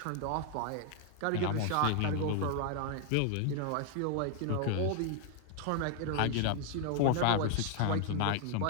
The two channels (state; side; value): different; both; correlation 0.00